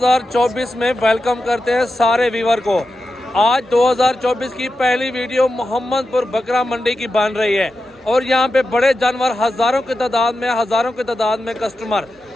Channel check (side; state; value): both; normal; correlation 0.90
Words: में वेलकम करते हैं सारे व्यूवर को। आज 2024 की पहली वीडियो मोहम्मदपुर बकरा मंडी की बन रही है और यहाँ पे बड़े जानवर हज़ारों की तादाद में कस्टमर,